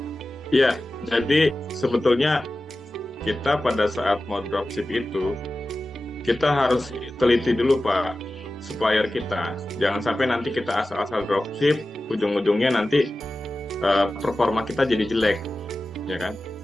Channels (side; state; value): both; normal; correlation 0.95